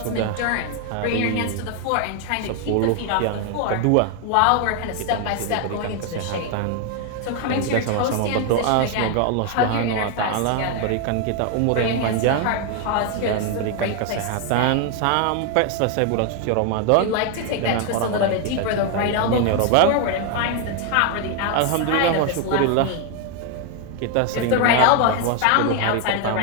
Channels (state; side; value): different; both; correlation 0.01